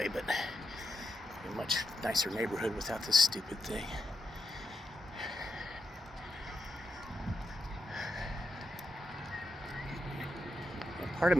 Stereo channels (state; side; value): normal; both; correlation 0.85